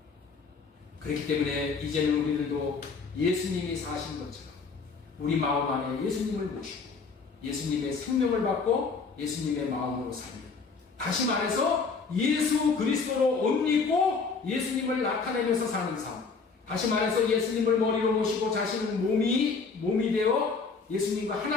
그렇기 때문에 이제는 우리들도 예수님이 사신 것처럼 우리 마음 안에 예수님을 모시고 예수님의 생명을 받고 예수님의 마음으로 살면, 다시 말해서 예수 그리스도로 옷 입고 예수님을 나타내면서 사는 삶, 다시 말해서 예수님을 머리로 모시고 자신은 몸이 되어 예수님과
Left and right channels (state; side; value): quieter; right; 4.8 dB